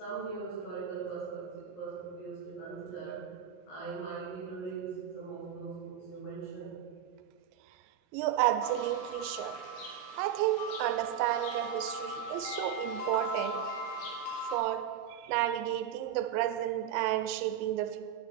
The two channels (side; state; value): left; quieter; 9.0 dB